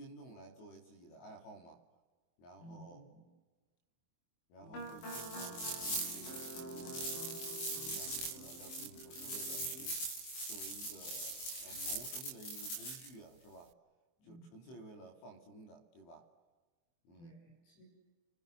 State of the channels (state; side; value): late; right; 23 ms